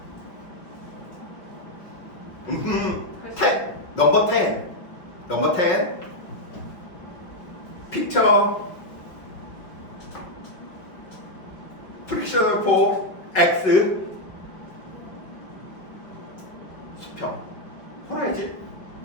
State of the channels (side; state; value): right; late; 5.2 ms